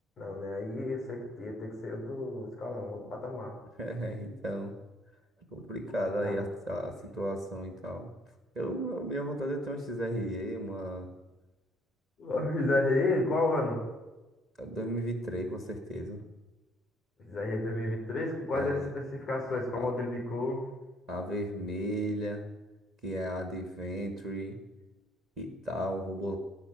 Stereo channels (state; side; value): normal; both; correlation 0.64